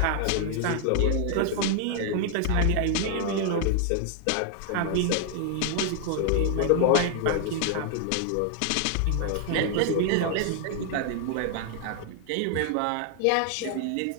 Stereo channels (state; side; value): different; both; correlation 0.00